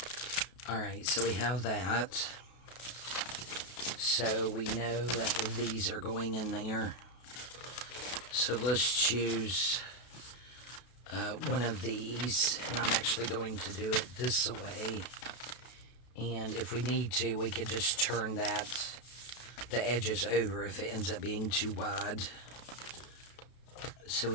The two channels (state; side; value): late; right; 32 ms